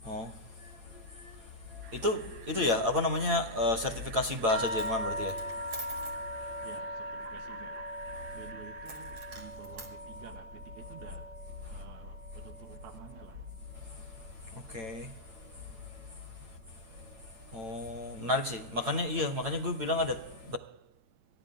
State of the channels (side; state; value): left; late; 8.9 ms